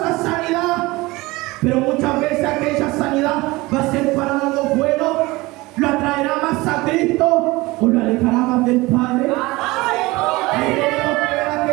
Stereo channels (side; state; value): left; quieter; 21.4 dB